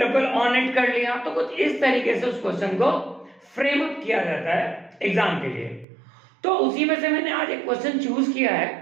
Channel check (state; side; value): drops out; left; at 5.9 s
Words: ऑन इट कर लिया। तो कुछ इस तरीके से उस क्वेश्चन को फ्रेम अप किया जाता है एग्जाम के लिए। तो उसी में से मैंने आज एक क्वेश्चन चूज किया